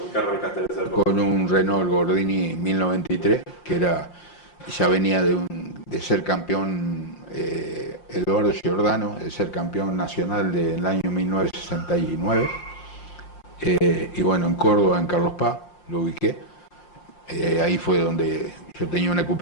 qué arrancaste en esa época? Con un Renault Gordini 1093, que ya venía de ser campeón, Eduardo Giordano, de ser campeón nacional del año 1969. Y bueno, en Córdoba, en Carlos Paz, lo ubiqué. Ahí fue donde yo tenía una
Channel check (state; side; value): late; right; 5.7 ms